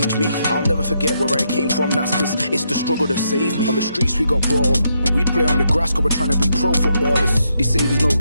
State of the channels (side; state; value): both; inverted; correlation -0.79